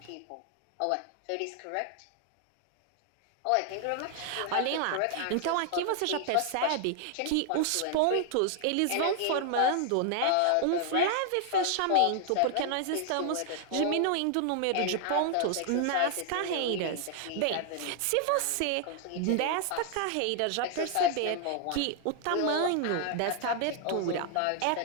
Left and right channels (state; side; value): different; both; correlation 0.00